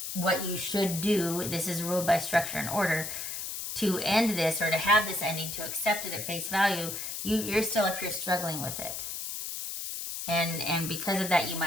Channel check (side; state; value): left; noise; hiss, 5 dB below the sound